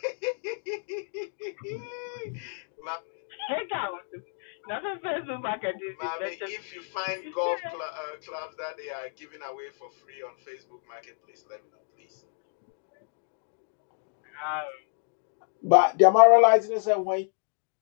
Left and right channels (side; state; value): right; silent; digital silence